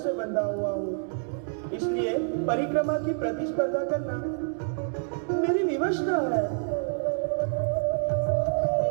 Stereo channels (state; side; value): silent; left; digital silence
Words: बंधा हुआ हूँ, इसलिए परिक्रमा की प्रतिस्पर्धा करना मेरी विवश न है।